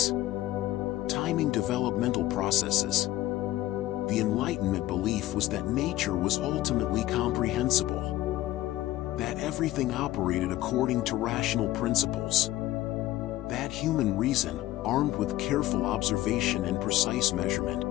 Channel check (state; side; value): quieter; right; 15.7 dB